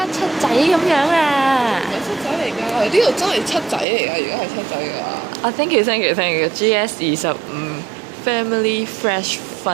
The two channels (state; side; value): drops out; left; at 3.9 s